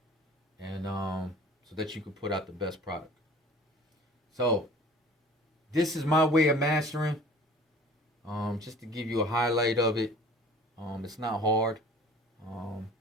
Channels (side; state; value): both; normal; correlation 0.47